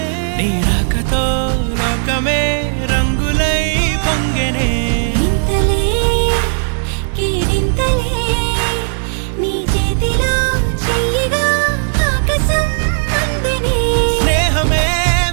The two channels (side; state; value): left; silent; digital silence